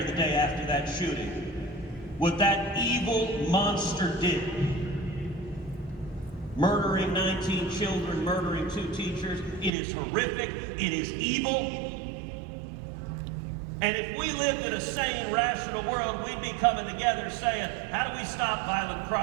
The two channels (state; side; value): drops out; left; at 9.7 s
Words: the day after that shooting. What that evil monster did, murdering 19 children, murdering 2 teachers, it is horrific, it is evil. And if we lived in a sane, rational world, we'd be coming together saying, how do we stop violent